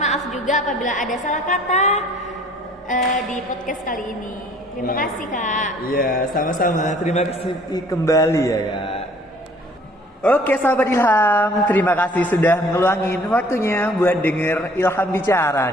maaf juga apabila ada salah kata di podcast kali ini. Terima kasih Kak. Iya, sama-sama. Terima kasih kembali ya Kak. Oke sahabat Ilham, terima kasih sudah ngeluangin waktunya buat denger Ilham bicara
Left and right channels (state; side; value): normal; both; correlation 0.55